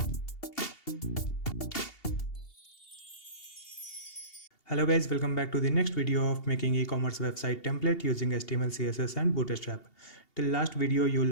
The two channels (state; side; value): late; right; 2.8 ms